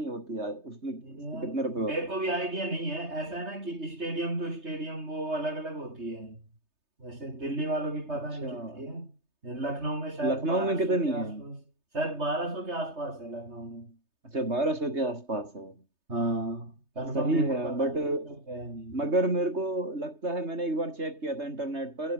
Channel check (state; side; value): late; left; 3.3 ms